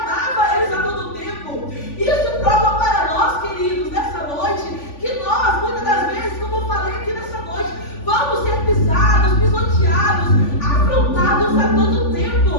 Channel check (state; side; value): late; right; 3.5 ms